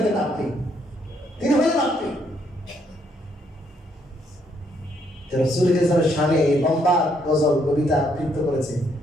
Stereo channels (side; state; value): both; normal; correlation 0.72